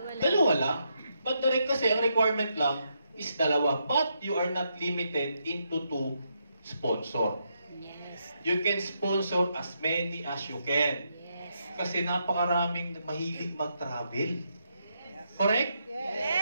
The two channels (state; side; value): inverted; both; correlation -0.80